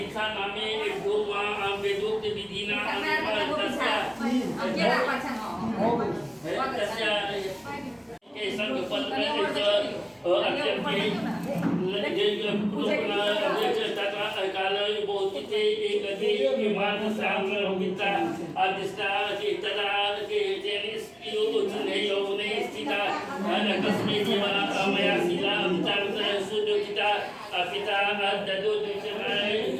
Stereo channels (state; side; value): identical; both; correlation 1.00